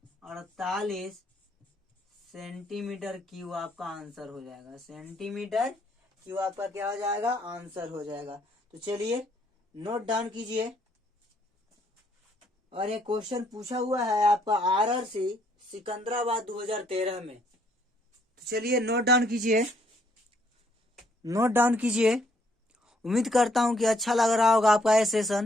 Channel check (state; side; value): normal; both; correlation 0.68